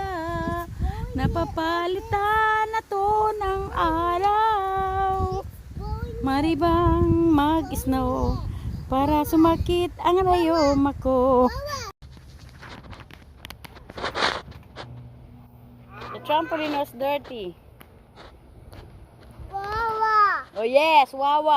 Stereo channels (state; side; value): identical; both; correlation 1.00